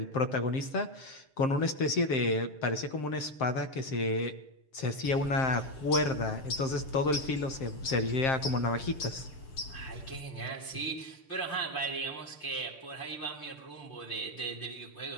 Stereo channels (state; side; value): late; right; 6.8 ms